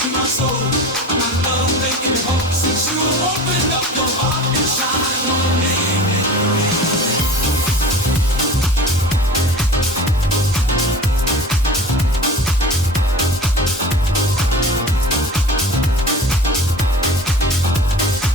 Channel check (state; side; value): normal; both; correlation 0.38